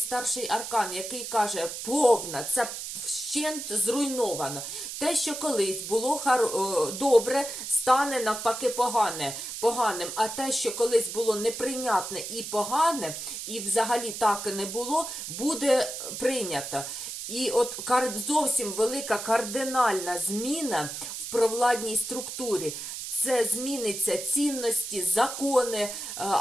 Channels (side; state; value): right; noise; hiss, 7 dB below the sound